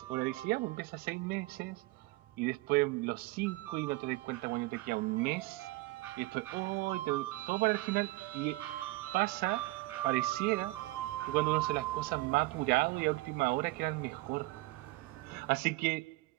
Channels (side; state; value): left; quieter; 20.4 dB